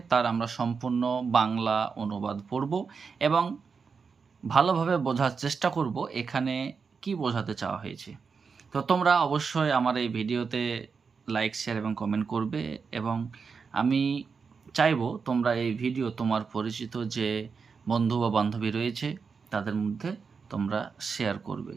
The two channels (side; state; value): left; quieter; 5.4 dB